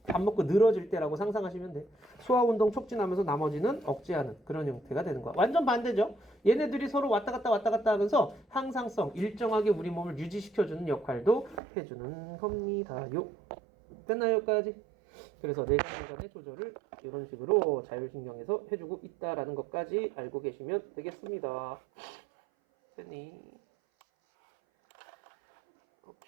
밥 먹고 늘어질 때라고 상상하시면 돼. 소화운동 촉진하면서 나머지는 억제하는 그런 형태가 되는 거야. 완전 반대죠. 얘네들이 서로 왔다 갔다 하면서 항상성, 일정하게 우리 몸을 유지시켜주는 역할도 해주는 겁니다요. 됐나요, 여기까지? 그래서 내장기관의 조절을 이런 식으로 자율신경에서 해주고 있다라는 것까지 알고 계시면 되겠습니다. 됐니?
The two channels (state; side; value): drops out; left; at 11.6 s